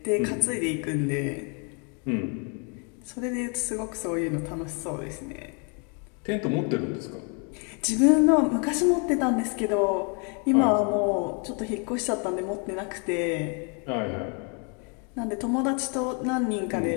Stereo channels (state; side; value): quieter; right; 36.8 dB